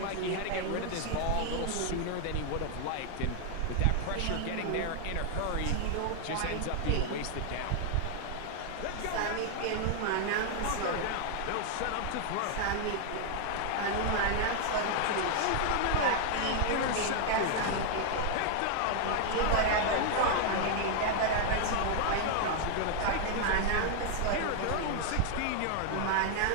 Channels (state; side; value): different; both; correlation 0.00